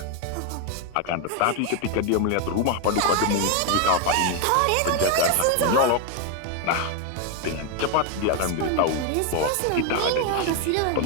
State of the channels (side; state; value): both; different; correlation 0.01